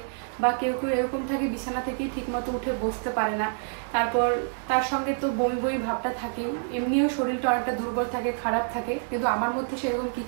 বা কেউ কেউ এরকম থাকে বিছানা থেকেই ঠিকমতো উঠে বসতে পারে না। তারপর তার সঙ্গে তো বমি বমি ভাবটা থাকে, এমনিও শরীরটা অনেকটা দুর্বল থাকে, খারাপ থাকে। কিন্তু আমার মধ্যে সেরকম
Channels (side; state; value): left; silent; digital silence